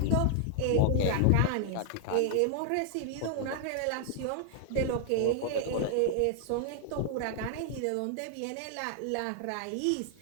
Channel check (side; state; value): both; different; correlation 0.00